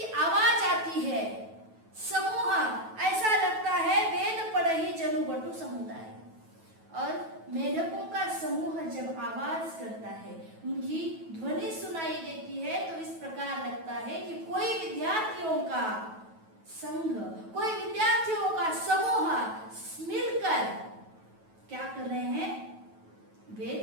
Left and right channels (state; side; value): late; left; 9.2 ms